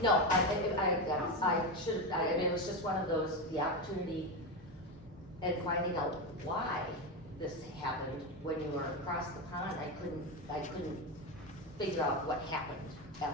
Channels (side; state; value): both; normal; correlation 0.14